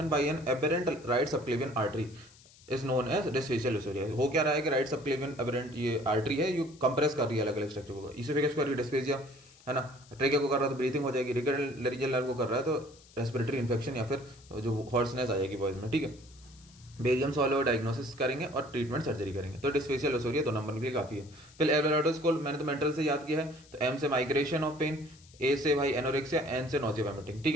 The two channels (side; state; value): left; noise; hiss, 25 dB below the sound